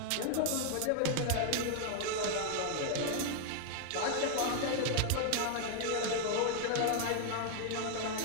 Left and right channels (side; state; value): both; different; correlation 0.00